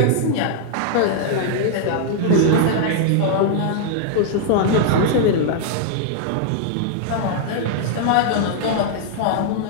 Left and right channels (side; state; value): both; different; correlation -0.01